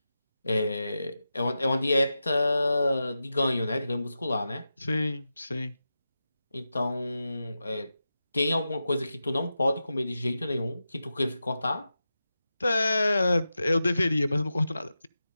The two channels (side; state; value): both; inverted; correlation -0.92